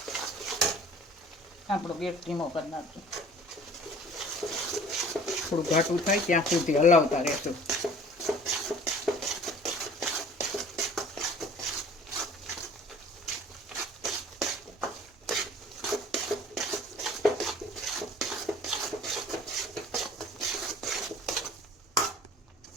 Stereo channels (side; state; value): both; normal; correlation 0.48